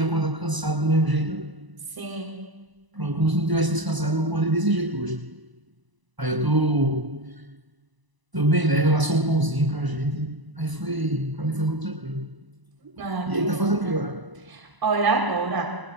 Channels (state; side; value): late; left; 1.0 ms